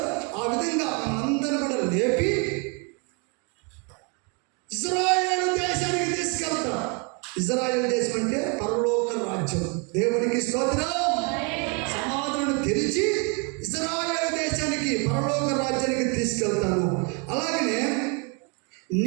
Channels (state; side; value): quieter; left; 34.0 dB